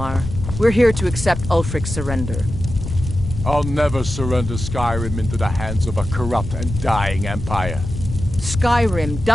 We're here to accept Ulfric's surrender. I'll never surrender Skyrim into the hands of a corrupt and dying empire. Skyrim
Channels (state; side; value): noise; left; rumble, 7 dB below the sound